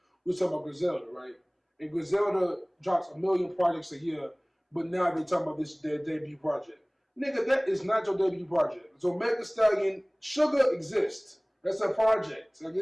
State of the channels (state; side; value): identical; both; correlation 1.00